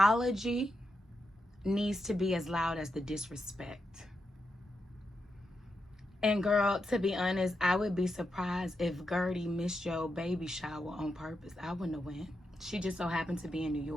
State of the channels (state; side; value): normal; both; correlation 0.85